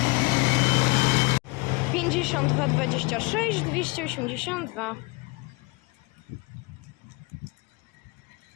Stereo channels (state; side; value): quieter; right; 26.9 dB